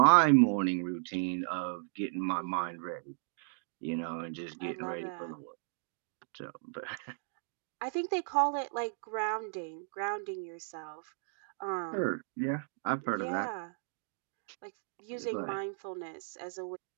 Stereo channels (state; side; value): silent; left; digital silence